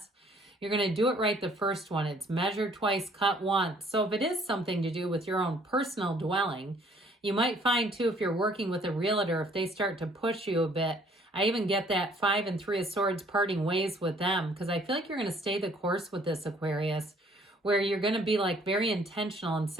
You're going to do it right the first one. It's measure twice, cut once. So if it is something to do with your own personal dwelling, you might find too, if you're working with a realtor, if they start to push you a bit, I even get that 5 and 3 of Swords parting ways with them, because I feel like you're going to stay the course with this, Aquarius, where you're going to be like very intentional and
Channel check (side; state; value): both; normal; correlation 0.60